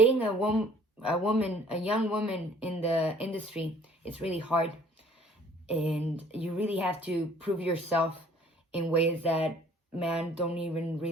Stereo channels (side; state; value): both; normal; correlation 0.55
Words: a young woman in the industry, it's really hard. And you really have to prove yourself in ways that men don't even